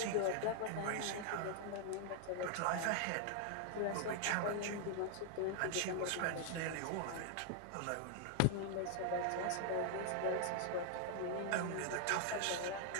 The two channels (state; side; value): different; both; correlation 0.00